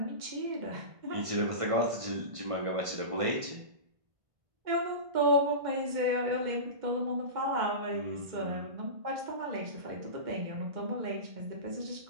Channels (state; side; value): late; left; 1.5 ms